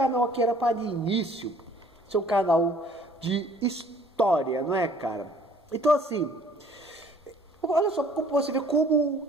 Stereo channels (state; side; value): normal; both; correlation 0.56